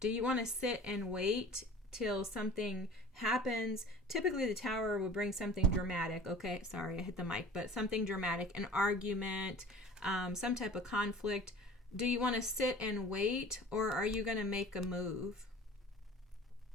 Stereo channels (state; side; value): normal; both; correlation 0.43